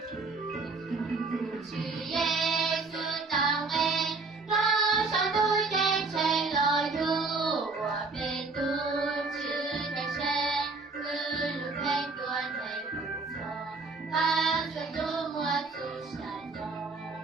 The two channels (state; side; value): quieter; left; 3.9 dB